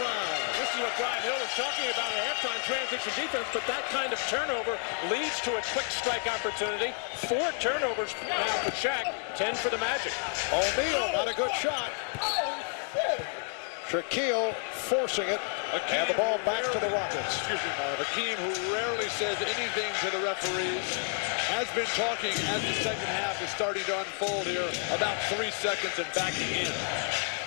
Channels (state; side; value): quieter; right; 39.9 dB